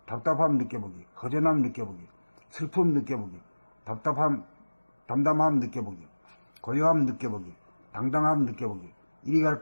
답답함 느껴보기, 허전함 느껴보기, 슬픔 느껴보기, 담담함 느껴보기, 고요함 느껴보기, 당당함 느껴보기, 이리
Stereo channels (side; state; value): both; inverted; correlation -1.00